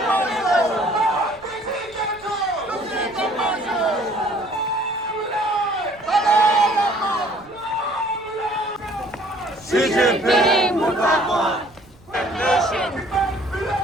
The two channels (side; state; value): right; noise; rumble, 26 dB below the sound